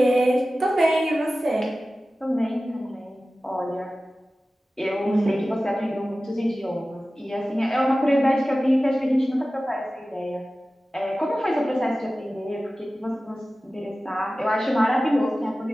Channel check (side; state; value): both; normal; correlation 0.96